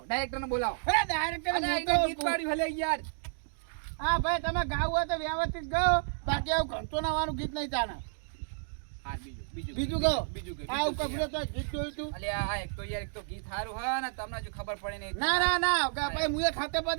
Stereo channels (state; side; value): silent; left; digital silence